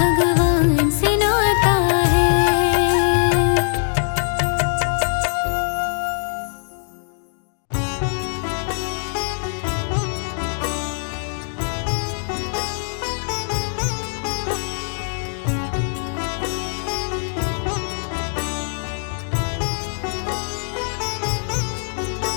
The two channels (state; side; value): silent; right; digital silence